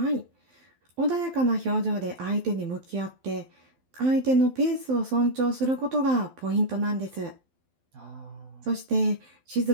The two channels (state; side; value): late; left; 12 ms